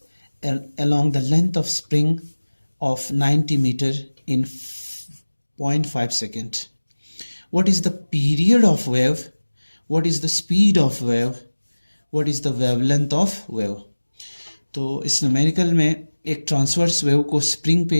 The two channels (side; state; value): both; inverted; correlation -1.00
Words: along the length of spring of 90 meter in 0.5 second. What is the period of wave? What is the speed of wave? What is the wavelength of wave? तो इस numerical में एक transverse wave को spring